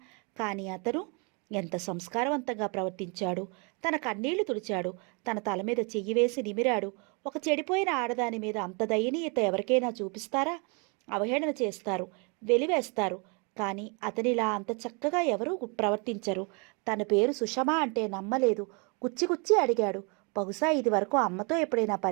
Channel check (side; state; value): left; quieter; 33.2 dB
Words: కానీ అతను ఎంత సంస్కారవంతంగా ప్రవర్తించాడు. తన కన్నీళ్లు తుడిచాడు. తన తల మీద చెయ్యి వేసి నిమిరాడు. ఒక చెడిపోయిన ఆడదాని మీద అంత దయనీయత ఎవరికైనా చూపిస్తారా? అవహేళన చేస్తారు, వెలివేస్తారు. కానీ అతనిలా అంత చక్కగా ఎవరూ ప్రవర్తించరు. తన పేరు సుషమా అంటే నమ్మలేదు. కుచ్చి అడిగాడు. బహుశా ఇది వరకు అమ్మతో ఎప్పుడైనా